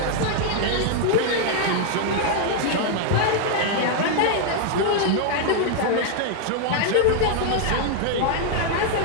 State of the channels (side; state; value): both; different; correlation 0.00